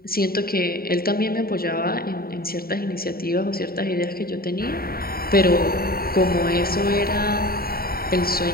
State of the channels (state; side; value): late; right; 0.43 ms